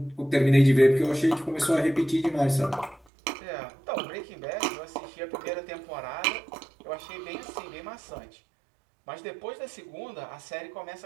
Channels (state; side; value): drops out; left; at 3.0 s